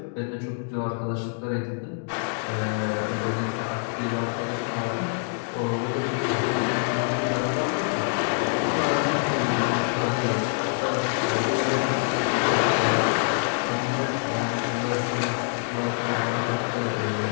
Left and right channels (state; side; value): silent; right; 60 dB below the other